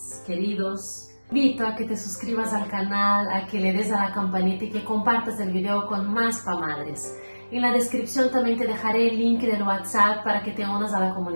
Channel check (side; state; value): both; inverted; correlation -1.00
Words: queridos, invito a que te suscribas al canal, a que le des a la campanita y que compartas el video con más pamadres. En la descripción también te dejaré el link del WhatsApp para que te unas a la